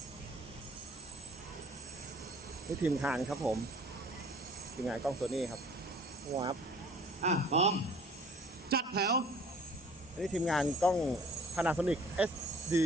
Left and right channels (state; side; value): normal; both; correlation 0.52